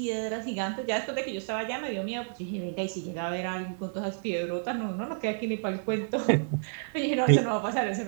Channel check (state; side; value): silent; left; digital silence